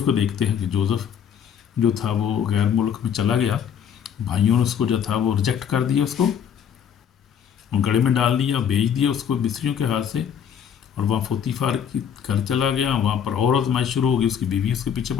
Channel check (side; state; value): right; quieter; 8.3 dB